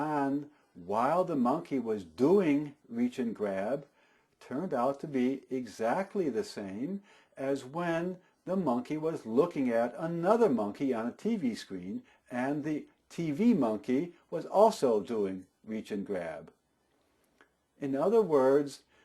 while the monkey was doing reach and grab turned out to be exactly the same as when the monkey was looking at another monkey on a TV screen, and the TV monkey was also doing reach and grab. In other words,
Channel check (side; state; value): both; identical; correlation 1.00